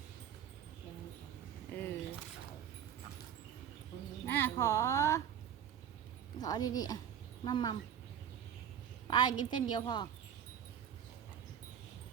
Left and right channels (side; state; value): left; quieter; 9.0 dB